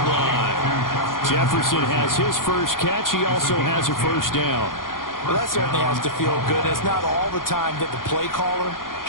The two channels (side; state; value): right; late; 0.90 ms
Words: line. Jefferson has his first catch. He also has a 1st down. Well, that certainly has to feel good. It's not all the time that the play caller